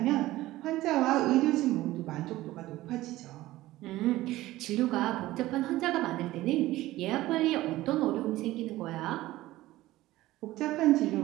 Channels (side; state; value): left; quieter; 16.8 dB